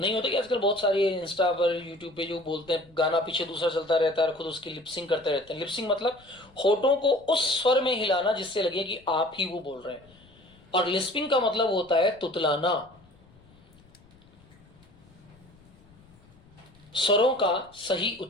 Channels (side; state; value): left; noise; rumble, 27 dB below the sound